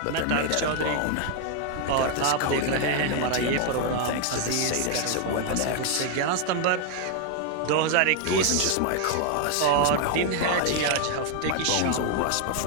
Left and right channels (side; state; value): both; different; correlation 0.00